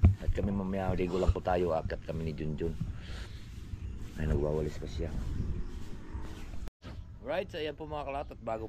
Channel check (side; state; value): both; identical; correlation 1.00